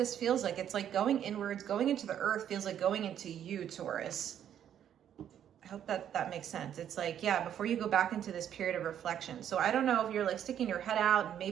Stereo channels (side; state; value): left; quieter; 9.9 dB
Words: feels like. It's like going inwards, going into the earth feels like going into you, Taurus. I hope that makes sense. It's like, yeah, before you go back into this period of reflection. So I don't know if you're like sticking your head out and